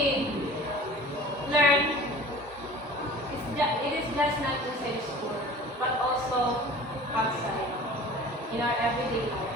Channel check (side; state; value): both; normal; correlation 0.43